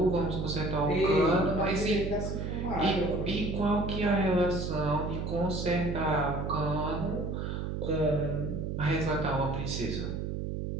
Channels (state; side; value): noise; right; hum, 3 dB below the sound